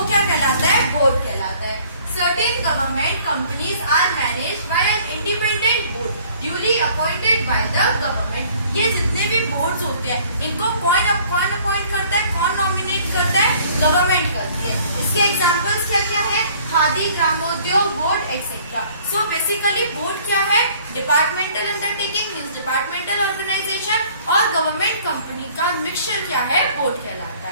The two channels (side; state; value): both; inverted; correlation -0.55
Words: क्या कहलाता है? बोर्ड कहलाता है। Certain government companies are managed by an independent board duly appointed by the government। ये जितने भी बोर्ड्स होते हैं इनको कौन अपॉइंट करता है? कौन नॉमिनेट करता है? गवर्नमेंट करती है। इसके एग्जांपल्स क्या क्या है? Khadi Gramodyog board etcetera. So basically board क्या है? Departmental undertaking means departmental organisation और गवर्नमेंट कंपनी का मिक्सचर क्या है? बोर्ड कहलाता